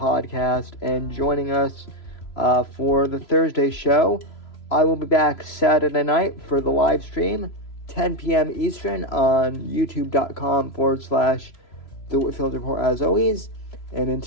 and joining us for the Thursday show. I will be back Saturday night for the live stream, 10 p.m. Eastern on youtube.com/The Whitfield Report as always. And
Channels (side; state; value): right; late; 3.0 ms